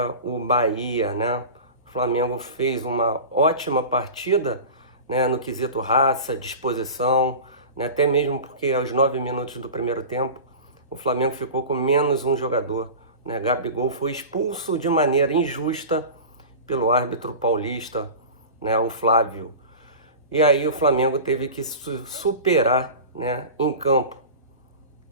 o Bahia, né? O Flamengo fez uma ótima partida, né, no quesito raça, disposição, né, até mesmo porque aos 9 minutos do primeiro tempo, o Flamengo ficou com menos um jogador, né? Gabigol foi expulso de maneira injusta pelo árbitro paulista, né, o Flávio. E aí o Flamengo teve que superar, né, em campo.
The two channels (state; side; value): inverted; both; correlation -0.33